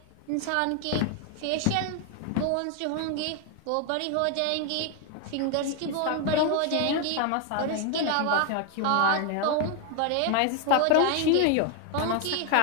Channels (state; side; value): different; both; correlation 0.01